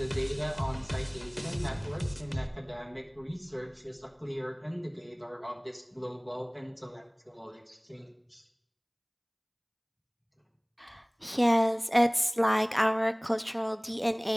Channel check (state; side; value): identical; both; correlation 1.00